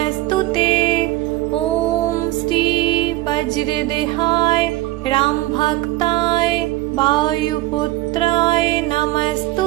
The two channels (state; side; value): quieter; left; 17.4 dB